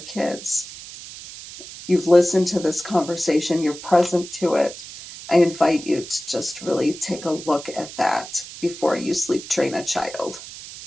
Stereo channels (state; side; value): noise; right; hiss, 14 dB below the sound